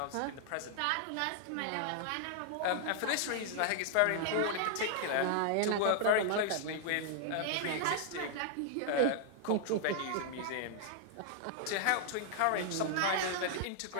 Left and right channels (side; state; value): both; different; correlation -0.01